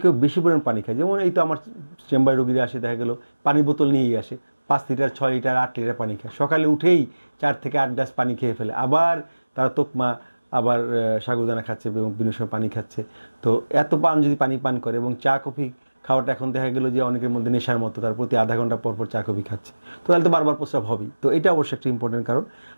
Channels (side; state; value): both; inverted; correlation -1.00